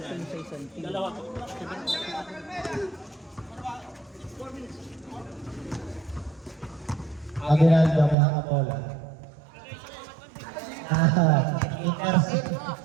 sa isang team. Dalawa po. Aguinaldo may hakabola. Intercept.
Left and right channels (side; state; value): left; drops out; at 8.2 s